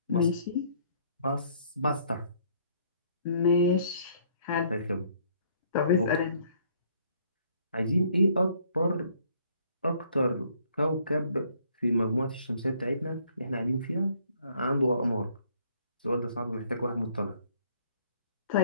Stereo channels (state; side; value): inverted; both; correlation -0.63